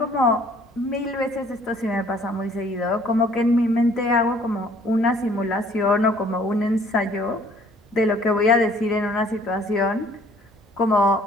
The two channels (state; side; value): normal; both; correlation 0.58